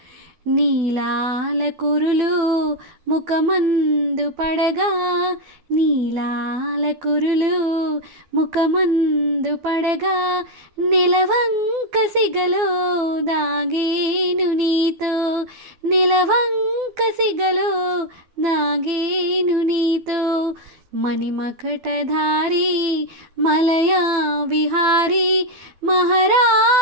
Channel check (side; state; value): left; late; 12 ms